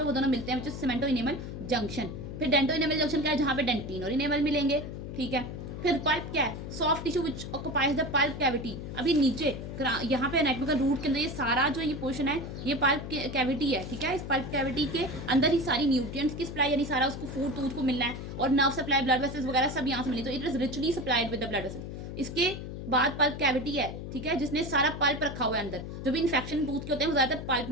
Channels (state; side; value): noise; left; hum, 8 dB below the sound